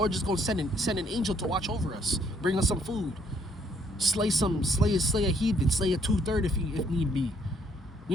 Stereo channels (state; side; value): normal; both; correlation 0.67